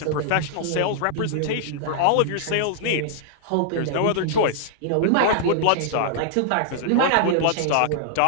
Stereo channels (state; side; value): different; both; correlation -0.01